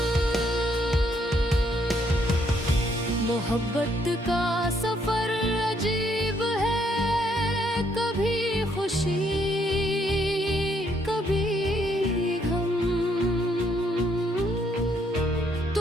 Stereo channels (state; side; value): normal; both; correlation 0.71